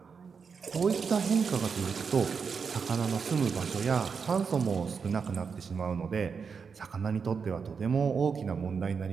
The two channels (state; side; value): quieter; left; 5.8 dB